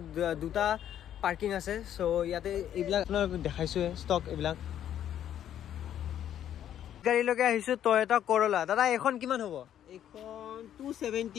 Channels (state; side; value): quieter; right; 10.6 dB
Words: দুটা পাৰ্কিং আছে সো ইয়াতে এইবিলাক আপোনালোক দেখাইছোৱে ষ্টক এইবিলাক গাড়ীলৈকে আহিছো টয়োটা কৰলা দাদা এখন কিমান হ'ব এখন